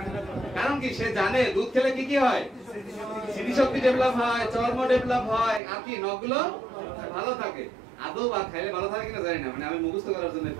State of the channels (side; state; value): left; drops out; at 5.6 s